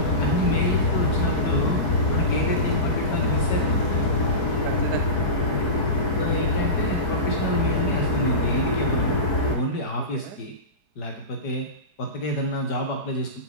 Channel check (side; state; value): right; late; 4.7 ms